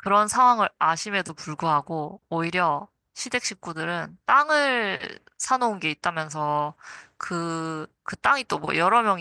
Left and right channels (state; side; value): identical; both; correlation 1.00